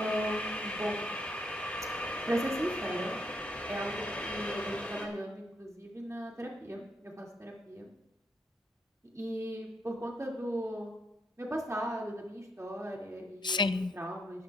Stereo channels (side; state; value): both; normal; correlation 0.75